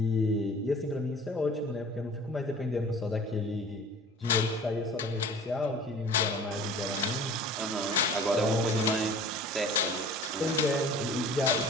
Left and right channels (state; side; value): normal; both; correlation 0.44